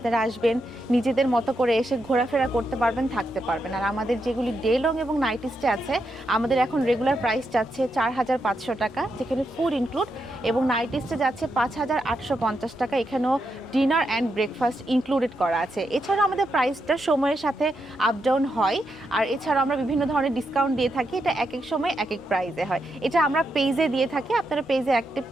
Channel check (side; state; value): both; normal; correlation 0.83